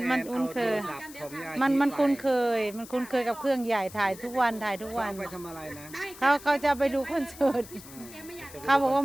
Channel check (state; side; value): noise; left; hiss, 17 dB below the sound